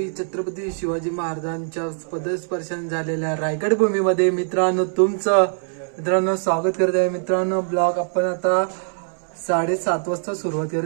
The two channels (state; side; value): silent; left; 62 dB below the other